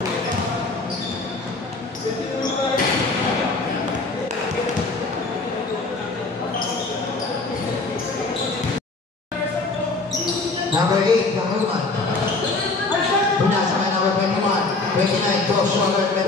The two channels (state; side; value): quieter; right; 3.5 dB